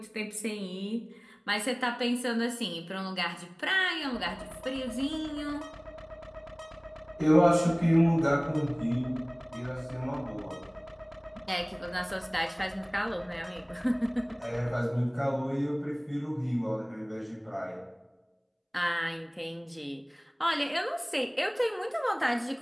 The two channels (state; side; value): identical; both; correlation 1.00